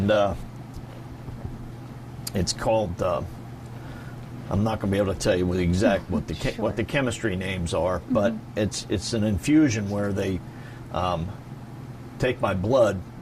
it's called. I'm not going to be able to tell you what the chemistry names are, but it's an infusion where they take my blood,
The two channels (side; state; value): both; identical; correlation 1.00